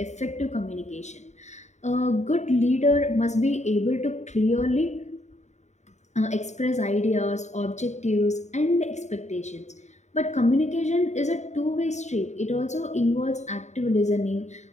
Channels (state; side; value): late; right; 0.34 ms